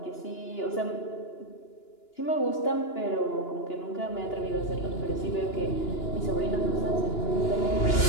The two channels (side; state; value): right; late; 2.9 ms